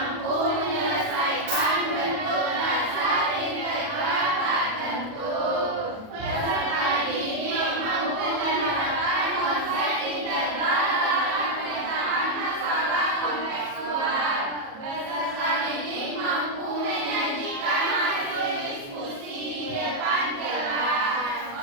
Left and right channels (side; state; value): left; late; 37 ms